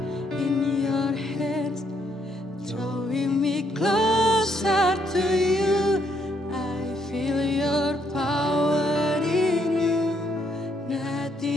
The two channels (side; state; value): both; normal; correlation 0.72